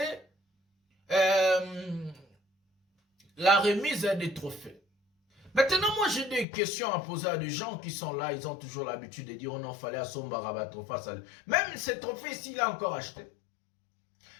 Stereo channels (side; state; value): right; drops out; at 6.5 s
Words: la remise des trophées. Maintenant, moi, j'ai des questions à poser à des gens qui sont là. Ils ont toujours l'habitude de dire, oh non, fallait à son barabat trophée. Même ce trophée ici, il a encore acheté.